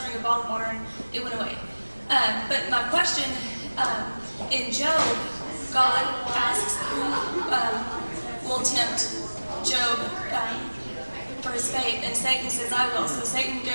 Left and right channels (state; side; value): inverted; both; correlation -1.00